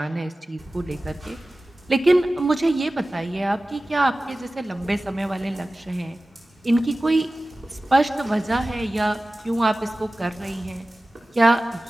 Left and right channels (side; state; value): both; normal; correlation 0.96